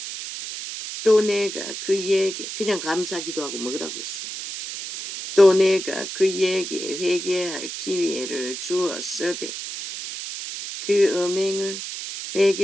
또 내가 그에게 그냥 감사 기도하고 먹으라고 했습니다. 또 내가 그에게 회개할 기회를 주었으되 그 음행을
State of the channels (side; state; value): right; noise; hiss, 7 dB below the sound